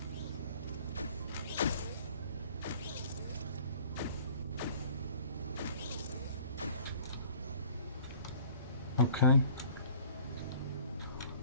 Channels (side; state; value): both; inverted; correlation -0.50